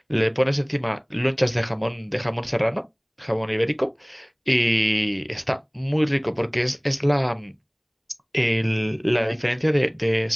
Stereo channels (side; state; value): both; identical; correlation 1.00